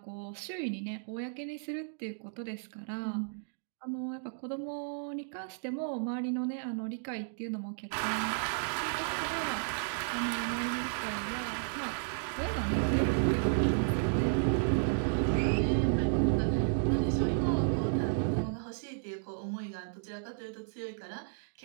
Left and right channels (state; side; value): silent; left; digital silence